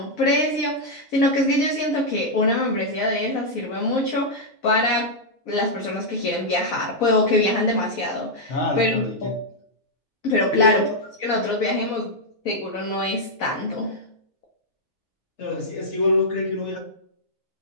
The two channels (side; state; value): both; normal; correlation -0.04